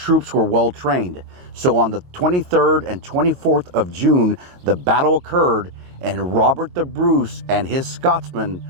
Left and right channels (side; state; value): left; late; 22 ms